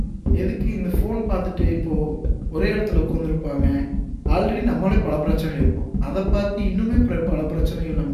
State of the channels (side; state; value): both; identical; correlation 1.00